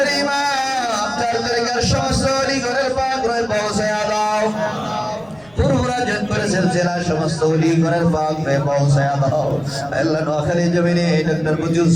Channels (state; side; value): noise; right; rumble, 28 dB below the sound